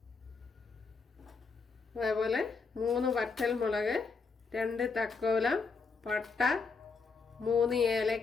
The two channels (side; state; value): right; quieter; 4.7 dB